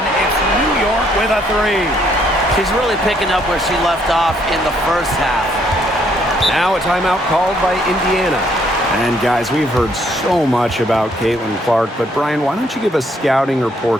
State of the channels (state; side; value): normal; both; correlation 0.68